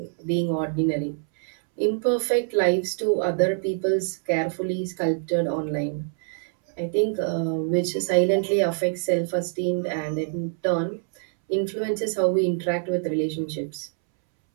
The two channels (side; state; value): left; silent; 62 dB below the other